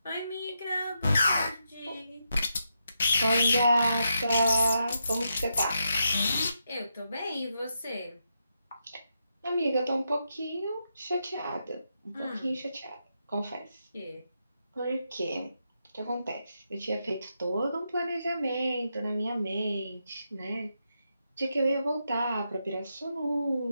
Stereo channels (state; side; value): inverted; both; correlation -0.84